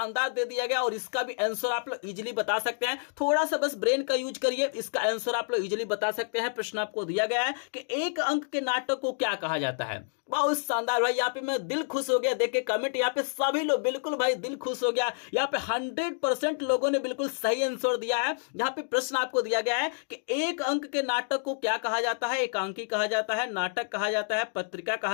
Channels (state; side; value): silent; right; digital silence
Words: दे दिया गया, और इसका भी आंसर आप लोग इजीली बता सकते हैं। थोड़ा सा बस ब्रेन का यूज करिए, इसका आंसर आप लोग इजीली बता सकते हैं। प्रश्न आपको दिया गया है कि एक अंक के नाटक को क्या कहा जाता है। बहुत शानदार भाई, यहाँ पे मैं दिल खुश हो गया देख के कमेंट। यहाँ पे सभी लोग बिल्कुल भाई दिल खुश हो गया। यहाँ पे 100% लोगों ने बिल्कुल सही आंसर दिया है। यहाँ पे प्रश्न आपको दिया गया है कि एक अंक के नाटक को क्या कहा जाता है। एकांकी कहा जाता है, नाटक कहा जाता है, पत्रिका